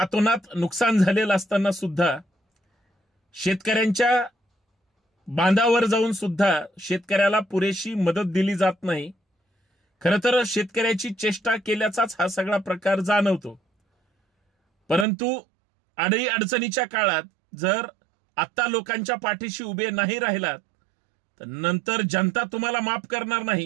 नुकसान झालेलं असताना सुद्धा शेतकऱ्यांच्या बांधावर जाऊन सुद्धा शेतकऱ्याला पुरेशी मदत दिली जात नाही. खरं तर शेतकऱ्याची चेष्टा केल्याचाच हा सगळा प्रकार जाणवतो. परंतु अडी अडचणीच्या काळात जर आता लोकांच्या पाठीशी उभे नाही राहिलात तर नंतर जनता तुम्हाला माफ करणार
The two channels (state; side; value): drops out; left; at 15.1 s